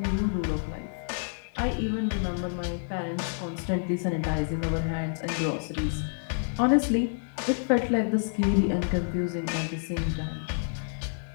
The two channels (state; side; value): silent; right; digital silence